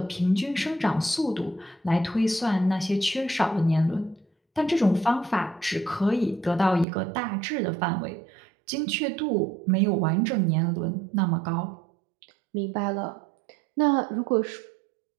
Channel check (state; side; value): drops out; left; at 6.9 s